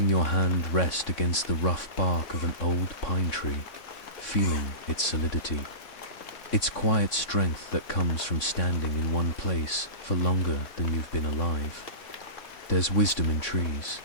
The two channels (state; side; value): late; right; 3.6 ms